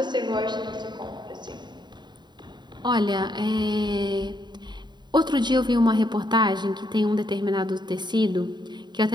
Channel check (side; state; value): left; late; 0.21 ms